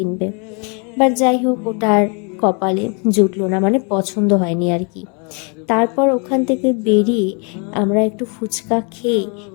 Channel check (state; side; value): quieter; right; 35.6 dB